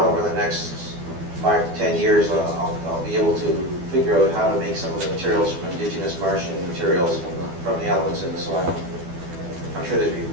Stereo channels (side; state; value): left; late; 12 ms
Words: over the next 5 to 10 years, I'll be able to figure out how to make some of the materials from indigenous Martian materials from the elements in the soil. I'm sure there's